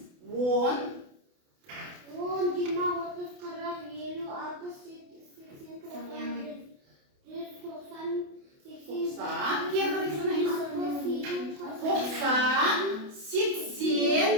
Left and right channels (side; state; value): left; late; 28 ms